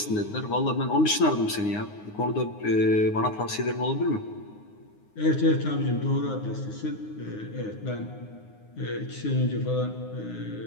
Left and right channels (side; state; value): right; late; 9.6 ms